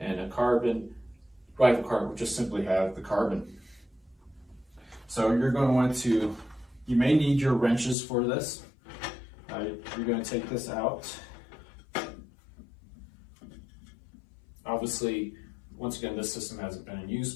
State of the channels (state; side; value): drops out; right; at 8.0 s